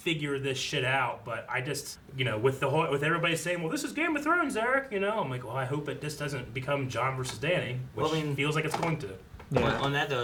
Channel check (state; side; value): identical; both; correlation 1.00